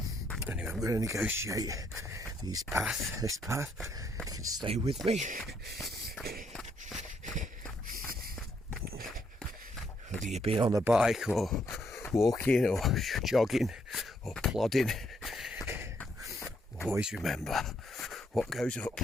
Anyway, I'm going to negotiate this path. You can stay with me. Whether you've been on the bike or walking or jogging or plodding, always remember, what goes up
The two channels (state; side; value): normal; both; correlation 0.73